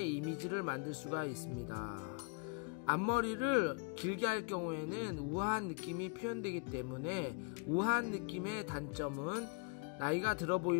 이미지를 만들 수가 있습니다. 앞머리를 길게 할 경우에는 우아한 느낌이 표현되기 때문에 우아한 느낌의 단점은 나이가 들어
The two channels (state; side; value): quieter; right; 35.7 dB